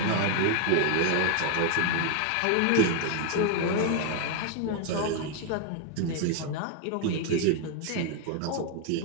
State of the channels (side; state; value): both; different; correlation 0.00